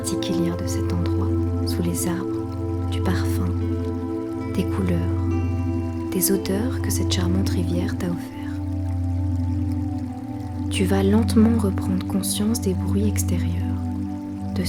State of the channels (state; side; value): identical; both; correlation 1.00